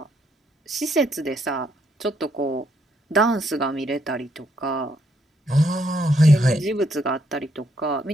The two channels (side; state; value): both; normal; correlation 0.74